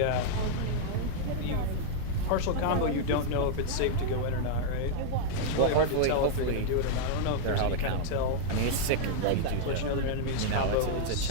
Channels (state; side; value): different; both; correlation -0.01